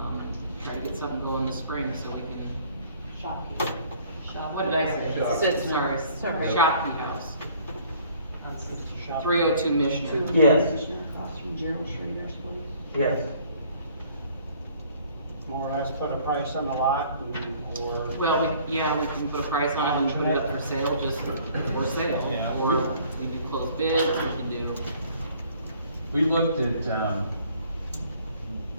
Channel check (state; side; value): inverted; both; correlation -0.57